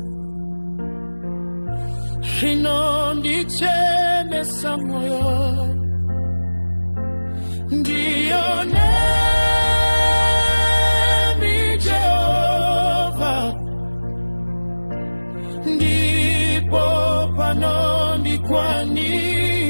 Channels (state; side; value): inverted; both; correlation -1.00